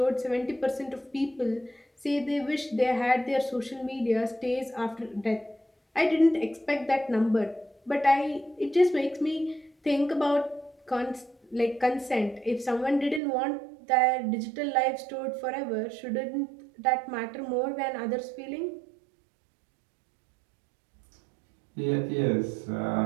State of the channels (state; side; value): drops out; left; at 13.2 s